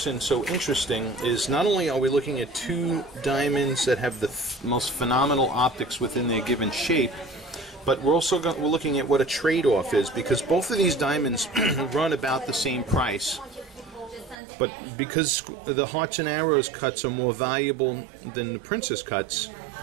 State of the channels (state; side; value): drops out; left; at 14.4 s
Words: so interesting is not only are we looking at two diamonds that have the most phenomenal optics within their given shape, but we're looking at what a trade-off is, because both of these diamonds run about the same price. But because the hearts and arrows cuts are more valuable than the princess cuts,